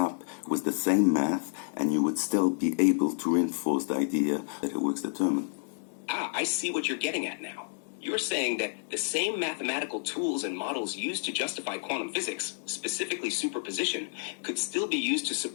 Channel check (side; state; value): right; silent; digital silence